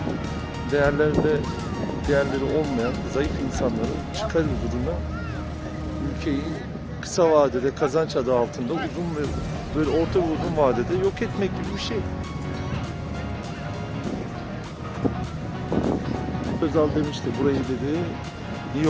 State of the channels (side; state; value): both; identical; correlation 1.00